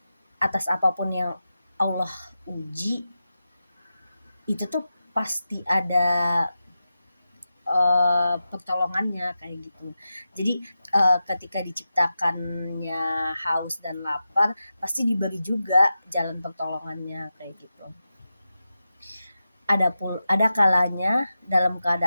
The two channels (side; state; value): both; inverted; correlation -0.91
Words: atas apapun yang Allah uji, itu tuh pasti ada pertolongannya kayak gitu. Jadi ketika diciptakannya haus dan lapar, pasti diberi juga jalan pertolongannya kayak gitu. Ada kalanya dalam